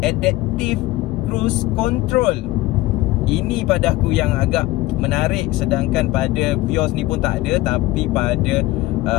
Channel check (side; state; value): right; quieter; 18.1 dB